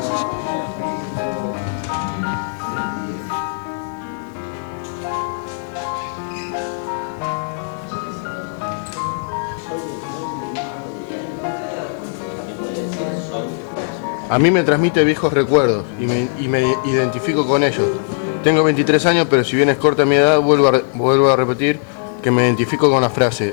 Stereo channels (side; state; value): right; silent; digital silence